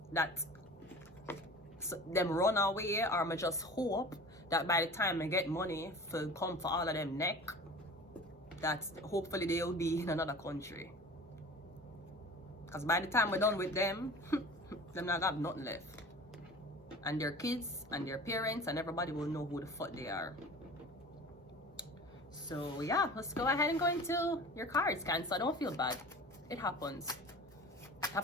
that them run away, or I just hope that by the time I get money for come for all of them neck, that hopefully they'll be in another country. Because by the time we're done with them, them not have nothing left. And their kids and their parents and everybody will know who the fuck they are. So yeah, let's go ahead and go into your cards, Cancer. Don't feel bad. It happens.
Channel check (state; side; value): normal; both; correlation 0.39